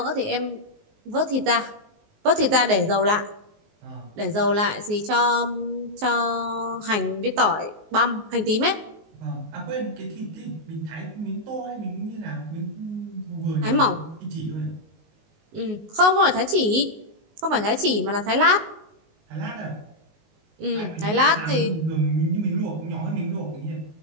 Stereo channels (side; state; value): left; late; 19 ms